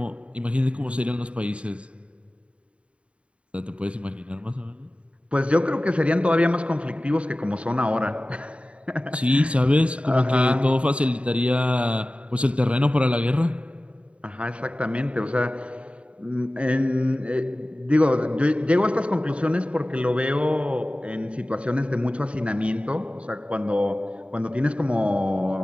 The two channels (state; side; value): late; left; 0.061 ms